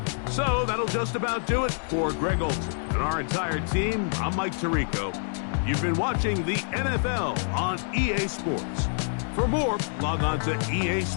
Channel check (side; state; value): right; silent; 60 dB below the other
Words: So that'll just about do it for Greg Olsen and our entire team. I'm Mike Tirico. You've been watching the NFL on EA Sports. For more, log on to